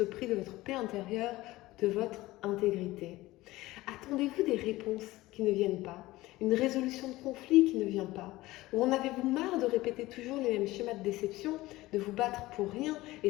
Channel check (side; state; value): right; quieter; 18.3 dB